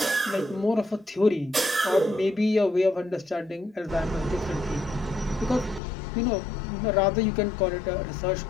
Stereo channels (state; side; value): drops out; right; at 5.8 s